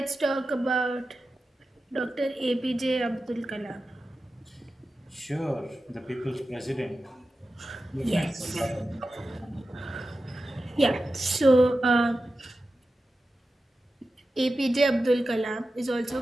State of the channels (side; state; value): both; normal; correlation 0.93